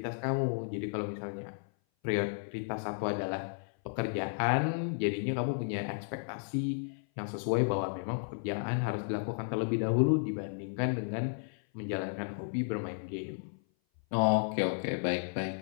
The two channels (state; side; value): silent; right; 56 dB below the other